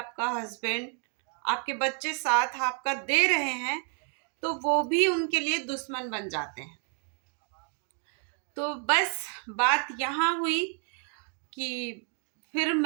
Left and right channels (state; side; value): quieter; left; 39.6 dB